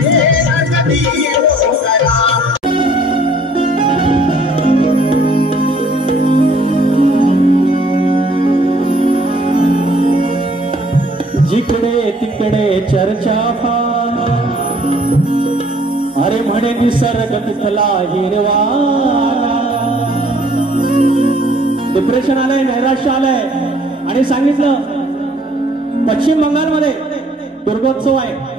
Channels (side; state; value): both; normal; correlation 0.59